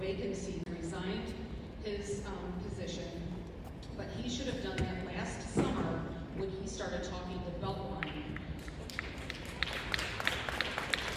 Resigned his position, but he should have done that last summer when he started talking to Beltline.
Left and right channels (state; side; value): identical; both; correlation 1.00